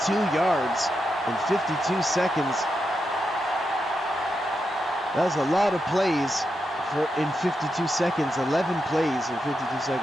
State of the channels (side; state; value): both; normal; correlation 0.86